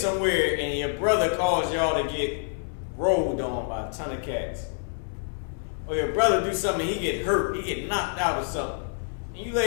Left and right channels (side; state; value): right; silent; digital silence